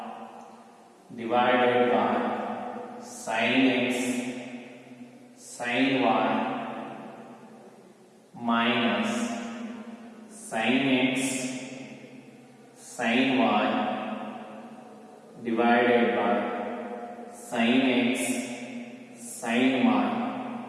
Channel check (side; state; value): both; identical; correlation 1.00